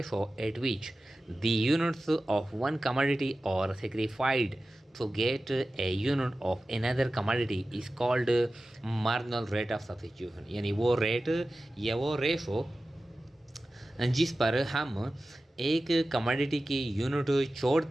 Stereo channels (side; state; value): both; normal; correlation 0.95